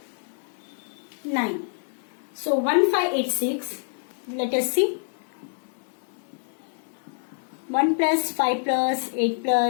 9. So 1586. Let us see. 1 plus 5 plus 8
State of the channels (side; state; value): right; silent; digital silence